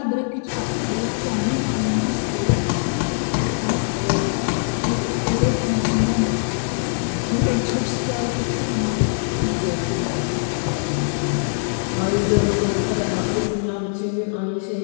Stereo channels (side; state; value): right; silent; 63 dB below the other